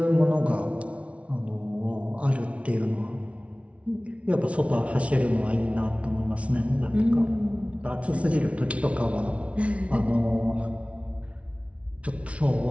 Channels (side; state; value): left; late; 0.063 ms